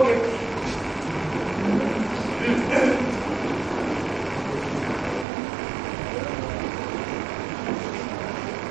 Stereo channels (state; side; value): drops out; left; at 5.2 s